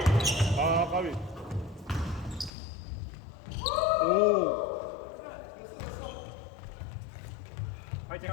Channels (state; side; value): drops out; right; at 2.5 s